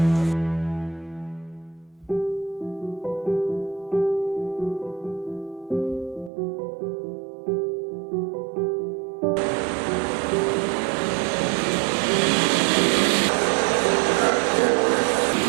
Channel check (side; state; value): left; drops out; at 6.3 s